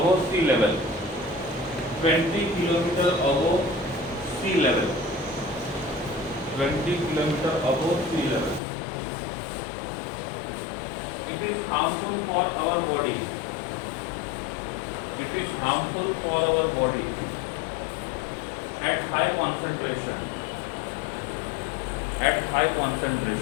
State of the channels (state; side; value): drops out; right; at 8.6 s